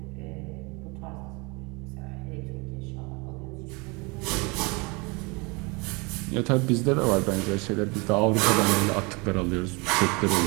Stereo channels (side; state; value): left; quieter; 28.1 dB